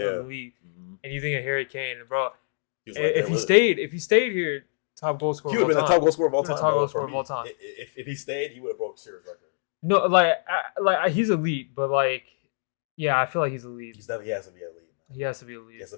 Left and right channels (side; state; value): right; silent; digital silence